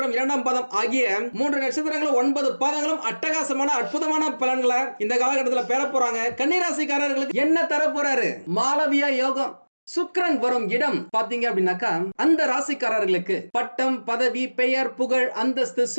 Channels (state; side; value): inverted; both; correlation -1.00